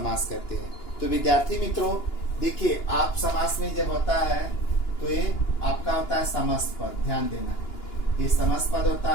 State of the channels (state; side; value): late; right; 2.9 ms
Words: करते हैं। तो विद्यार्थी मित्रों देखिए, आप समास में जब होता है तो ये आपका होता है समस्त पद। ध्यान देना, ये समस्त पद